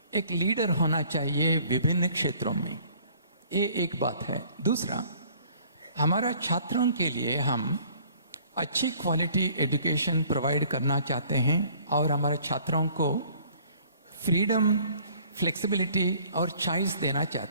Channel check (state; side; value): inverted; both; correlation -0.56